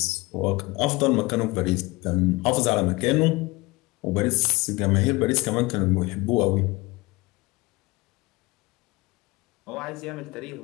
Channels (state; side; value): quieter; right; 23.1 dB